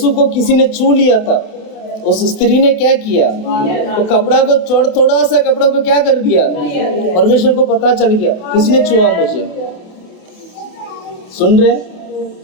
को किसी ने छू लिया था, उस स्त्री ने क्या किया? तो कपड़ा को थोड़ा सा कपड़ा को क्या कर दिया? परमेश्वर को पता चल गया किसने छुआ मुझे। सुन रहे?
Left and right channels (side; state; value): right; late; 28 ms